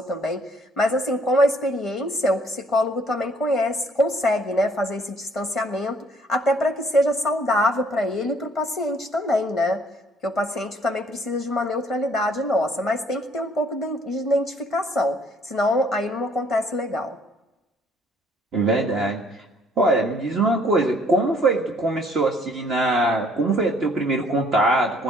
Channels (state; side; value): normal; both; correlation 0.61